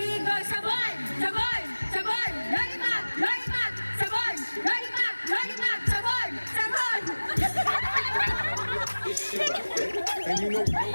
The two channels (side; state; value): both; inverted; correlation -1.00